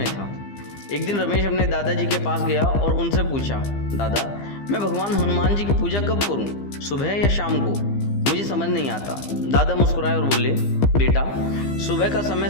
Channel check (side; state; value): right; late; 15 ms